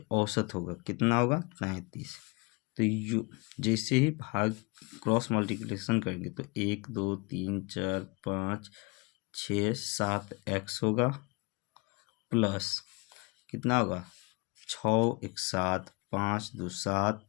औसत होगा कितना होगा? 35। तो यू जैसे ही भाग क्रॉस मल्टीप्लिकेशन करेंगे तो 1 2 3 4 5 6 7 x होगा प्लस कितना होगा? 6 1 7 5 2 7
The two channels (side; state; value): right; quieter; 28.6 dB